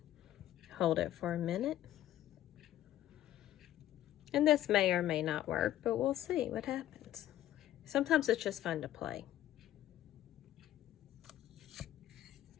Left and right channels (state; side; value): quieter; right; 12.9 dB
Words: Hold it for a minute. And this may or may not work, but we'll see what happens. Sometimes it's just fun to play.